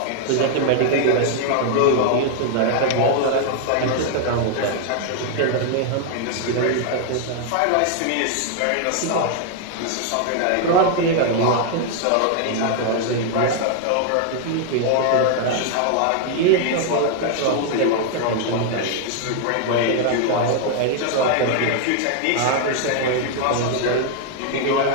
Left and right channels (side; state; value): both; different; correlation 0.00